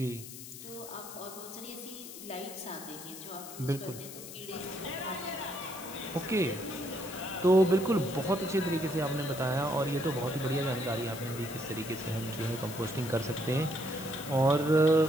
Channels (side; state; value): left; noise; hiss, 12 dB below the sound